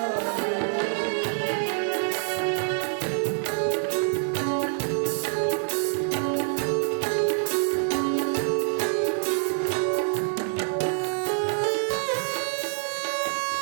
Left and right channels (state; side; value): silent; left; digital silence